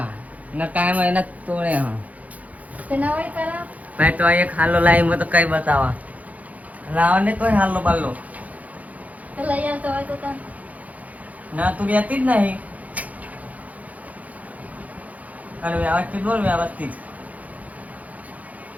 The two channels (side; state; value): left; late; 0.073 ms